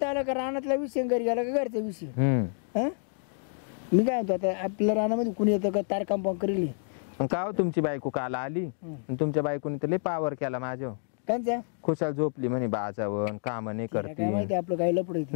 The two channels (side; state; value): right; silent; 59 dB below the other